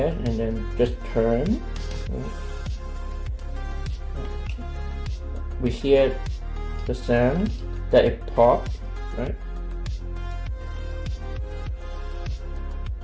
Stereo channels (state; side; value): identical; both; correlation 1.00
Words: and then just turn. We hear the sound that it popped, right?